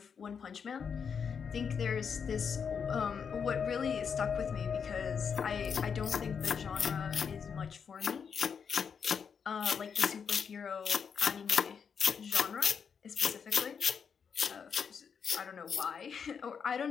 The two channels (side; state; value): right; quieter; 6.6 dB